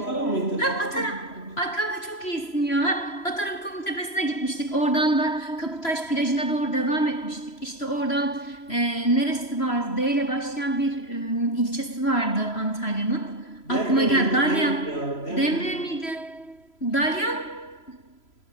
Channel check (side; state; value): right; late; 3.0 ms